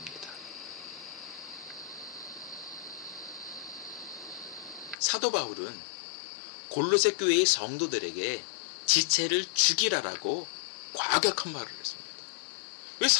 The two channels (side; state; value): right; drops out; at 5.0 s